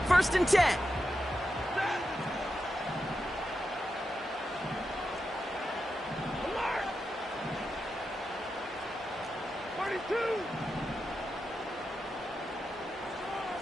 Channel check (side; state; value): both; normal; correlation 0.88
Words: 1st and 10. Alert! 32!